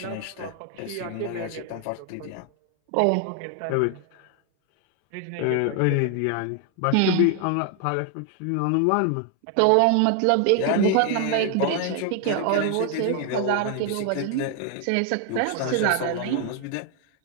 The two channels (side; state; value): both; different; correlation 0.00